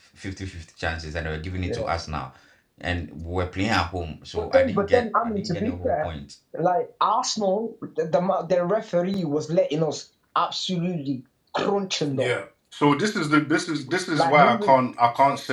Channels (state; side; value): identical; both; correlation 1.00